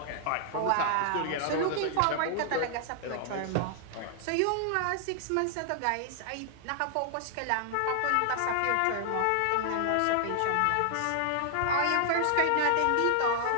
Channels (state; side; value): different; both; correlation 0.00